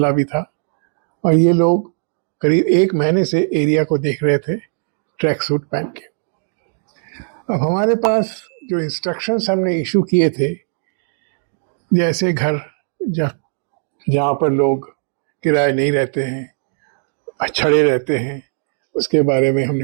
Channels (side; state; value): left; silent; digital silence